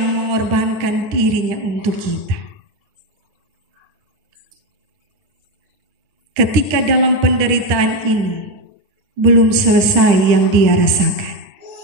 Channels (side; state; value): left; late; 9.8 ms